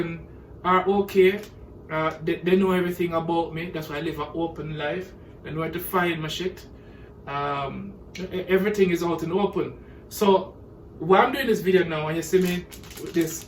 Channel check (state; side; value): identical; both; correlation 1.00